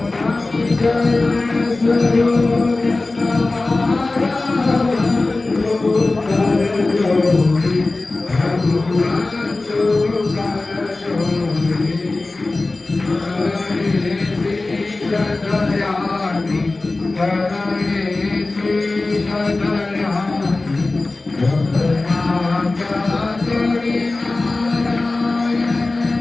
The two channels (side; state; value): right; quieter; 3.2 dB